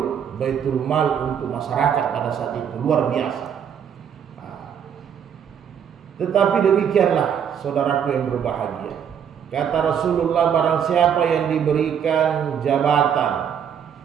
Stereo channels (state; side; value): quieter; left; 8.2 dB